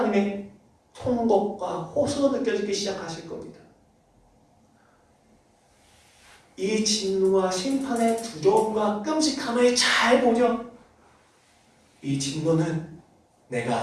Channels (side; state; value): both; identical; correlation 1.00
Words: 통곡과 호소로 느껴지기 시작하실 겁니다. 이 진노와 심판의 두려움과 끔찍함을 잘 보려. 이 진노는